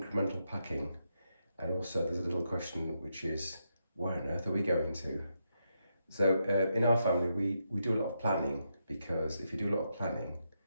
packing. And also, there's a little question which is, where on earth are we going to? So, in our family, we do a lot of planning because if you do a lot of planning,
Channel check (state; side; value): inverted; both; correlation -0.82